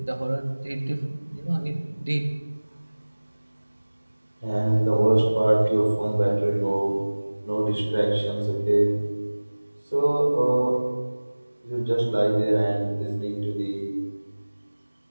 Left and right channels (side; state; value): both; inverted; correlation -1.00